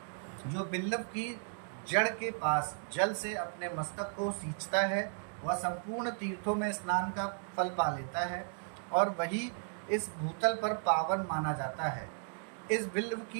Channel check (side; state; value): left; silent; 54 dB below the other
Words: जो बिल्लव की जड़ के पास जल से अपने मस्तक को सींचता है, वह संपूर्ण तीर्थों में स्नान का फल पा लेता है और वही इस भूतल पर पावन माना जाता है। इस बिल्व